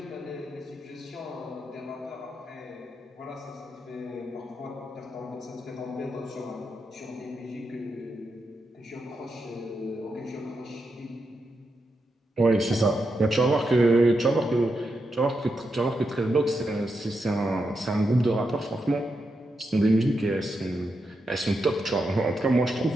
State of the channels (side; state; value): both; normal; correlation 0.85